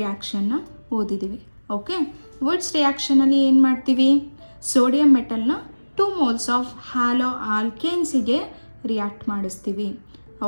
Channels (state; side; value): inverted; both; correlation -1.00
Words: ಓದಿದ್ದೀವಿ. ಓಕೆ, ವುಡ್ಸ್ ರಿಯಾಕ್ಷನಲ್ಲಿ ಏನು ಮಾಡ್ತೀವಿ? ಸೋಡಿಯಂ ಮೆಟಲ್ನ 2 moles ಆಫ್ ಹ್ಯಾಲೋ ಆಲ್ಕೇನ್ಸಿಗೆ ರಿಯಾಕ್ಟ್ ಮಾಡಿಸ್ತೀವಿ.